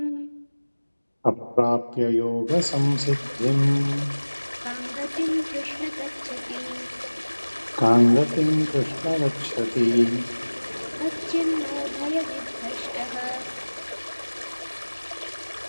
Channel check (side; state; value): both; inverted; correlation -1.00